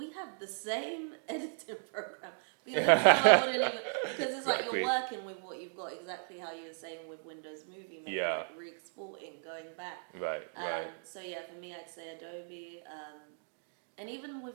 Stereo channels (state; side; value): silent; left; 54 dB below the other